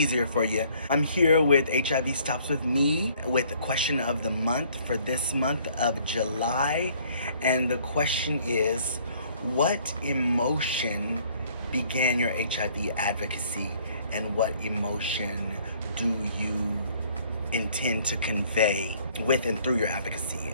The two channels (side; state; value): both; inverted; correlation -0.60